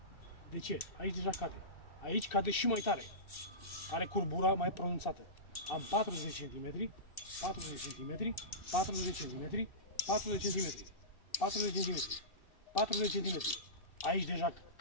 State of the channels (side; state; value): right; late; 2.6 ms